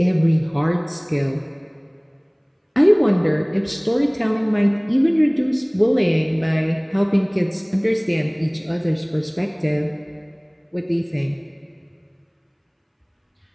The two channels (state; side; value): identical; both; correlation 1.00